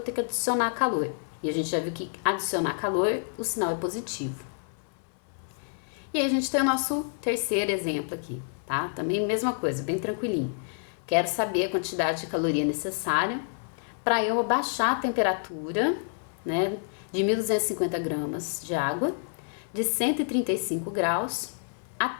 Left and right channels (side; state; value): right; silent; 59 dB below the other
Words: que adicionar calor. E a gente já viu que adicionar calor, o sinal é positivo. E aí, a gente tem o nosso terceiro exemplo aqui, tá? Também mesma coisa, bem tranquilinho. Quero saber a quantidade de caloria necessária para eu abaixar a temperatura, né, de 1.250 gramas de água, de 135 graus